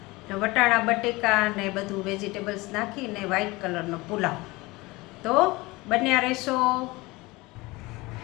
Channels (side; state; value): right; quieter; 22.2 dB